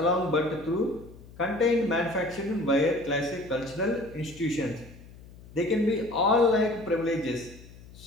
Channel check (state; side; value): noise; left; hum, 20 dB below the sound